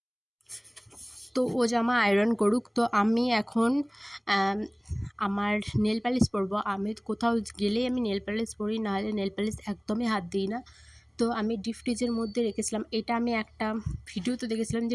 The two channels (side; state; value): both; identical; correlation 1.00